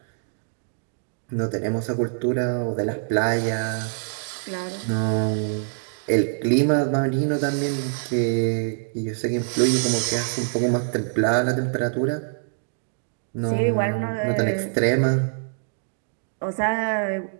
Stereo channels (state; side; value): silent; left; digital silence